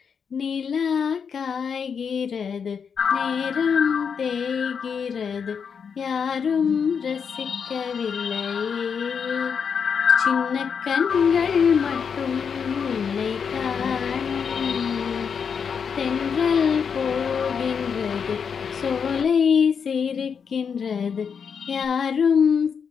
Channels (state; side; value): quieter; right; 6.6 dB